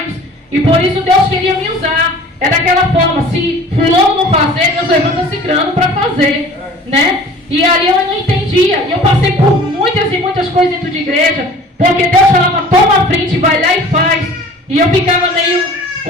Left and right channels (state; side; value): normal; both; correlation 0.46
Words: e por isso Deus queria me usar. É daquela forma, se fulano não fazer, Deus levanta cicrano para fazer, né? E ali eu não entendia, e eu passei por muitas e muitas coisas dentro de igreja, porque Deus falava, toma a frente, vai lá e faz. E eu ficava meio